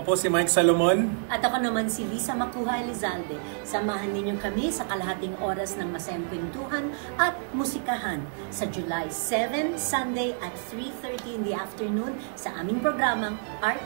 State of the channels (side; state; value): left; silent; 59 dB below the other